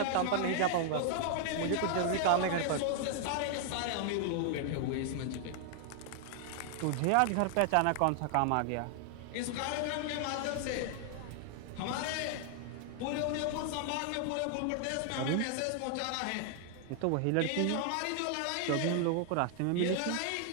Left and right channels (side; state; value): both; different; correlation 0.00